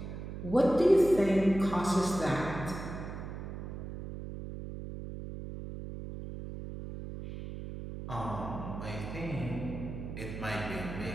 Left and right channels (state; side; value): noise; right; hum, 8 dB below the sound